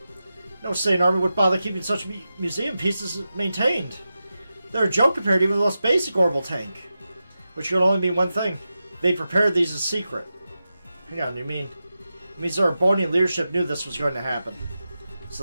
No sane army would bother keeping such museum pieces maintained. They're a joke compared to even the most basic orbital tank. Which could only mean one thing. They prepared these in secret. Hang on, it means the Erebonian leadership knew this was going to happen.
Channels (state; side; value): inverted; both; correlation -0.92